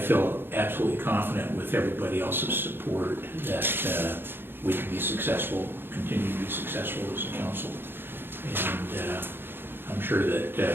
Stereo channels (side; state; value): left; late; 0.10 ms